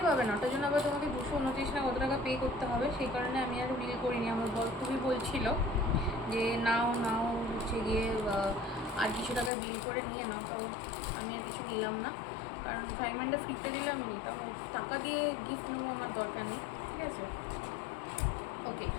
পাবে না, ওটার জন্য আবার তোমাকে 229 না কত টাকা পে করতে হবে। সেই কারণে আমি আর বিল করিনি। আমার বর খুবই বলছিল যে নাও হচ্ছে গিয়ে আর কিছু টাকা বিল করে নিয়ে নাও। তো আমি আর কিছু নিলাম না, কারণ ফ্রাইং প্যানটা ফ্রিতে দিলে আমি নিতাম, টাকা দিয়ে গিফট নেবো আমার দরকার নেই, ঠিক আছে। ওকে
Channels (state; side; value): drops out; right; at 9.5 s